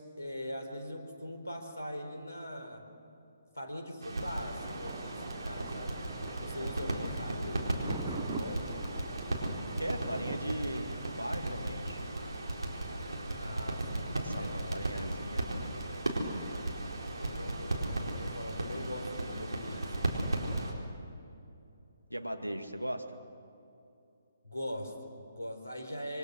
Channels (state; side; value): inverted; both; correlation -0.84